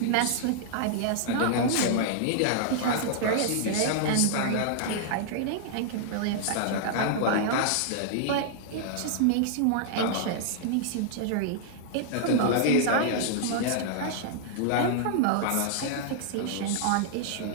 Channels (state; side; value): different; both; correlation -0.01